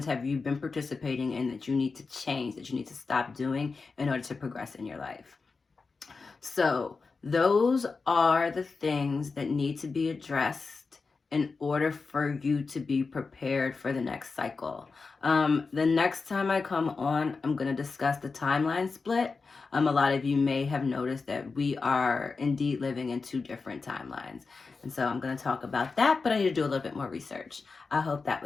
have you been participating in that you need to change, that you need to stop doing in order to progress in your life. So those are the things that need to be addressed in order for you to be prepared for the next cycle. The next time I come on, I'm going to discuss the timeline split. A lot of you may have noticed that we are indeed living in 2 different timelines. And so I'm going to talk about that, but I need to do a little bit more research. I hope that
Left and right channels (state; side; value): quieter; right; 4.4 dB